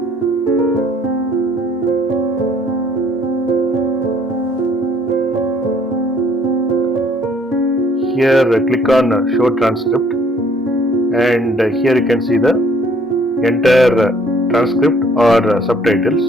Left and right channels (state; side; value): normal; both; correlation 0.60